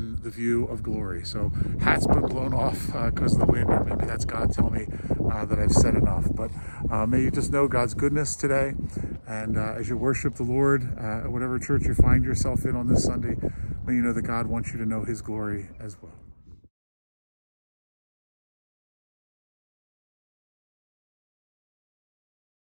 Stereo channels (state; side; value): inverted; both; correlation -1.00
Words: the view of glory. So hats been blown off because of the wind, or maybe that's God telling me that I've said enough. But may you just know God's goodness today, and as you worship the Lord, whatever church you find yourself in on this Sunday, may you know that God wants you to know his glory as well.